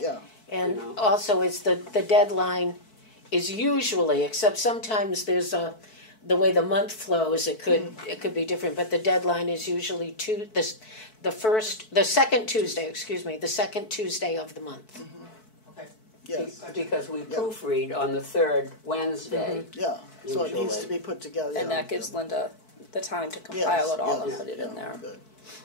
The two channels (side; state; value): right; late; 4.6 ms